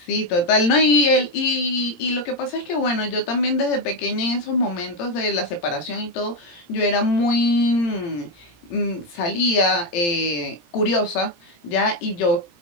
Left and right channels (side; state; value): right; late; 17 ms